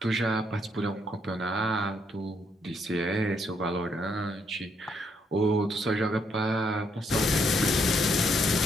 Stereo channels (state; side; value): normal; both; correlation 0.73